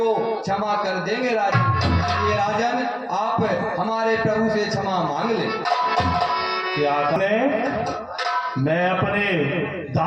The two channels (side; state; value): both; identical; correlation 1.00